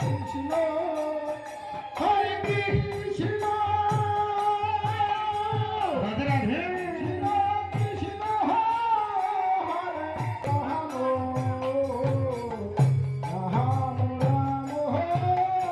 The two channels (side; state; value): both; identical; correlation 1.00